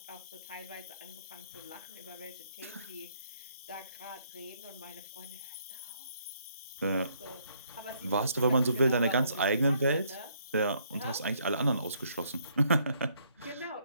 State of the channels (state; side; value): inverted; both; correlation -0.69